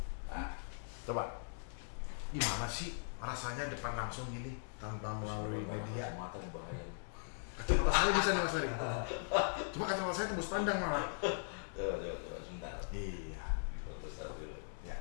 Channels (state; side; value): silent; right; digital silence